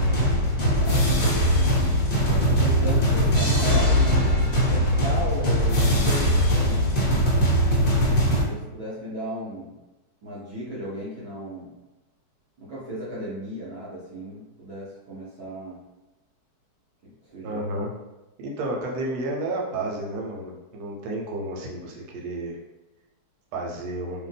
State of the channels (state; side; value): late; left; 4.6 ms